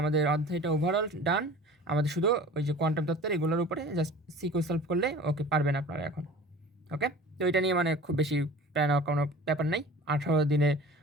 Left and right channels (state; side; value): normal; both; correlation 0.41